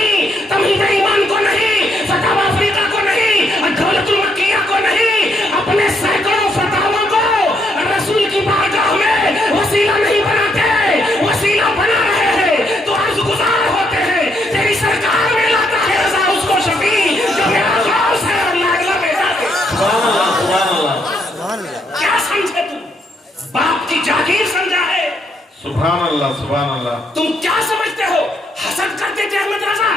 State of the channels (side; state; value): both; normal; correlation 0.74